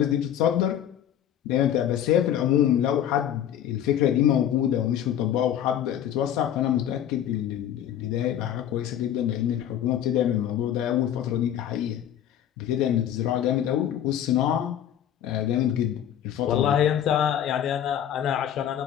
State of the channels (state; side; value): quieter; right; 10.4 dB